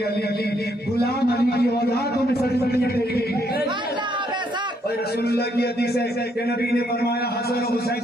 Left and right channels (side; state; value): both; normal; correlation 0.72